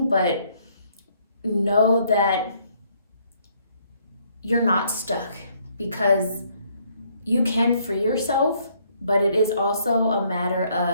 but know that you're not stuck, because you can free yourself, but it is also a matter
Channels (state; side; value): inverted; both; correlation -0.67